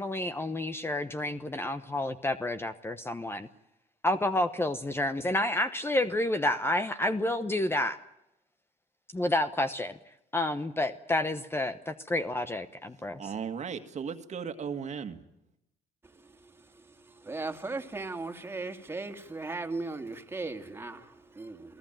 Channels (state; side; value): normal; both; correlation 0.62